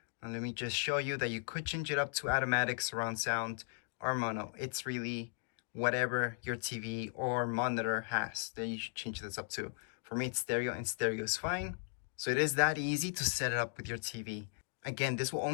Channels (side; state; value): right; silent; digital silence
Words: Now let me just show you that you could change it up to automatic, surround sound, or mono. It's really whatever your TV or monitor has that you should change this up to. For me, it's stereo, and stereo is fine. So it is that easy to set it up with your TV. Again, this will